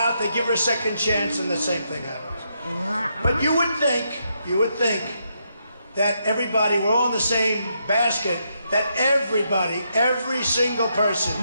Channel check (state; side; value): inverted; both; correlation -0.79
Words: they give her a second chance, and the same thing happens. But you would think that everybody, we're all in the same basket, that everybody, every single person.